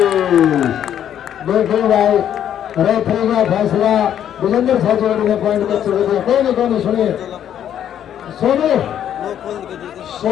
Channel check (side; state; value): right; quieter; 10.1 dB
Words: देखो भाई रेफरी का फैसला विजेंद्र साहब ने पॉइंट कर चुके थे। कोई नहीं सुनिए